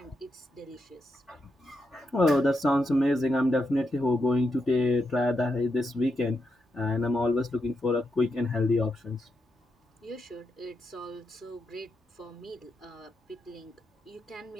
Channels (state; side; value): normal; both; correlation 0.84